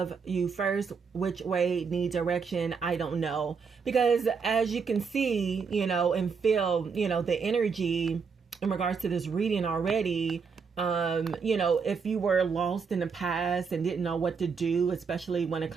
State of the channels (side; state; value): left; quieter; 5.6 dB